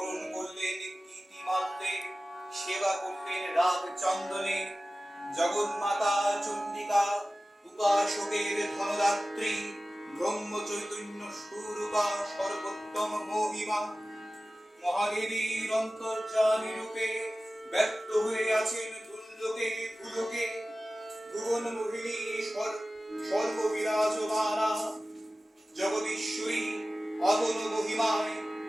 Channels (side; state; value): both; normal; correlation 0.96